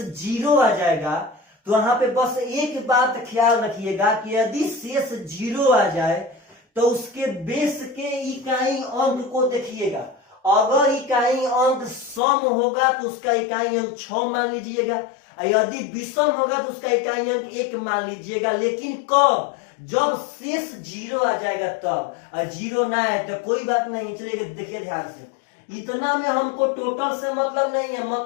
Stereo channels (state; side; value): drops out; right; at 12.2 s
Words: 0 आ जाएगा तो वहां पे बस एक बात ख्याल रखिएगा कि यदि शेष 0 आ जाए तो उसके बेस के इकाई अंक को देखिएगा। अगर इकाई अंक सम होगा तो उसका इकाई अंक 6 मान लीजिएगा, यदि विषम होगा तो उसका इकाई अंक 1 मान लीजिएगा। लेकिन कब? जब शेष 0 आ जाएगा तब। 0 ना आए तो कोई बात नहीं। चलिए देखिए ध्यान से, इतना में हमको टोटल से मतलब नहीं है,